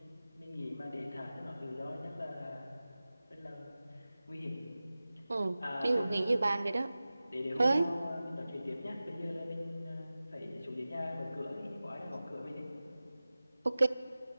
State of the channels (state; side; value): inverted; both; correlation -0.96